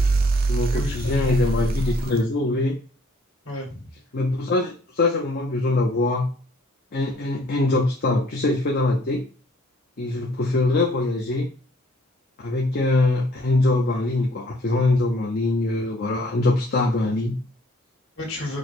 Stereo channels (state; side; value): normal; both; correlation 0.60